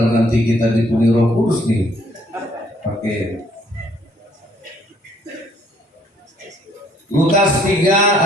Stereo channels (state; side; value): normal; both; correlation 0.64